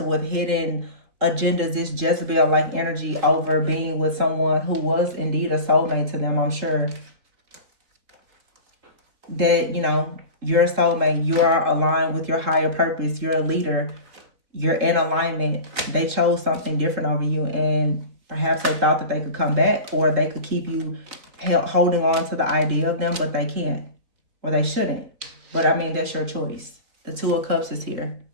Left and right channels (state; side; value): late; left; 3.7 ms